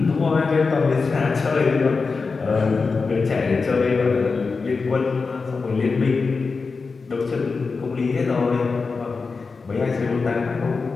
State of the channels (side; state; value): right; quieter; 4.5 dB